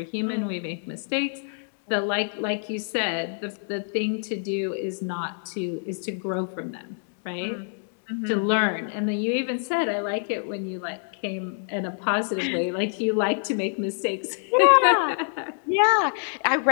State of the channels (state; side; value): silent; right; digital silence